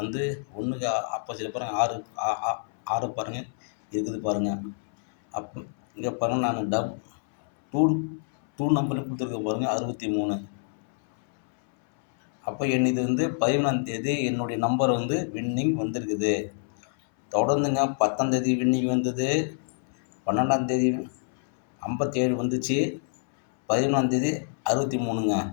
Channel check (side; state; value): right; silent; 60 dB below the other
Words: ஆப்போசிட் பாருங்கள், 6 பாருங்கள் இருக்குது பாருங்கள். இங்கே பாருங்கள், நான் டூ நம்பர் கொடுத்துருக்க பாருங்கள், 63. அப்போ இது 13ஆம் தேதி என்னுடைய நம்பர் வின்னிங் வந்திருக்குது. தொடர்ந்துங்க 10ஆம் தேதி வின்னிங் வந்தது, 12ஆம் தேதி 57 வந்துச்சு, 13ஆம் தேதி 63ங்க.